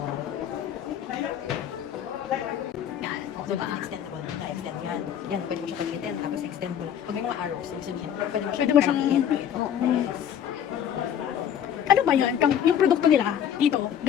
Yan. Diba? Extendable. Na-extend yan. Yan, pwede mo siya pag-extend. Tapos extend mo lang. Pag may mga arrows, ibig sabihin, pwede mo siya Pwede mo siyang... Ano ba yun? Yung produkto nila dito,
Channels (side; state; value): right; quieter; 9.4 dB